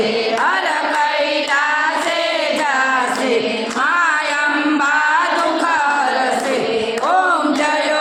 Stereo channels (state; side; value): identical; both; correlation 1.00